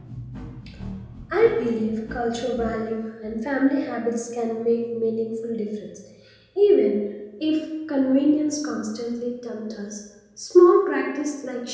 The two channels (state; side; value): identical; both; correlation 1.00